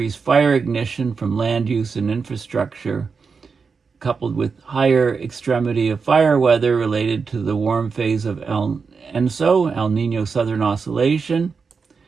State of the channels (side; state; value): left; quieter; 5.2 dB